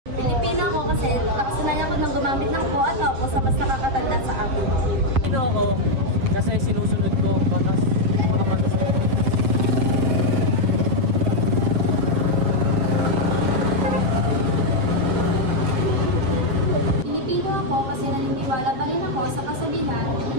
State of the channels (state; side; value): late; left; 7.3 ms